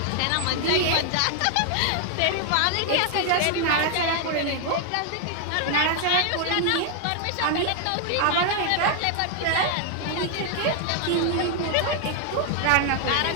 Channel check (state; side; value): different; both; correlation 0.00